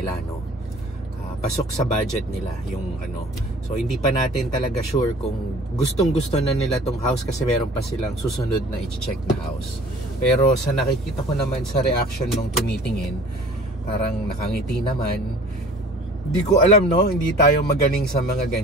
no? Pasok sa budget nila yung ano. So hindi pa natin talaga sure kung gustong-gusto na nila tong house kasi meron pa silang susunod na i-check na house. Pero sa nakikita ko naman sa reaction nung tumitingin, parang nakangiti naman. Hindi ko alam, no? Hindi tayo magaling sa mga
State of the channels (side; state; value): both; normal; correlation 0.48